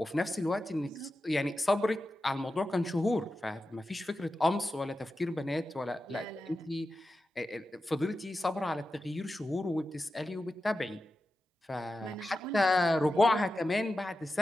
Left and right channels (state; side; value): normal; both; correlation 0.92